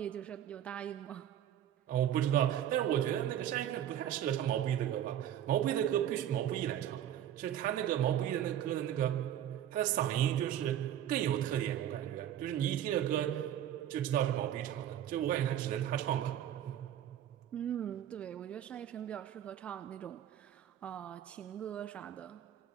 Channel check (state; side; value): quieter; left; 10.9 dB